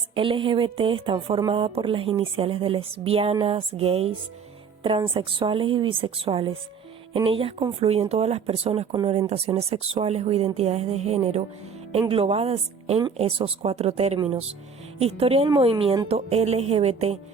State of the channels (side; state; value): left; quieter; 6.0 dB